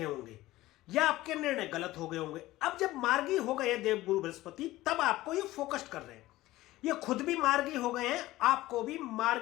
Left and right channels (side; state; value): right; quieter; 17.1 dB